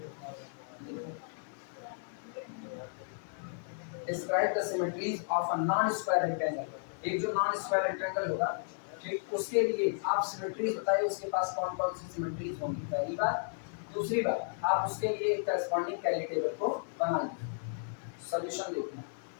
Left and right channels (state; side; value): silent; right; 55 dB below the other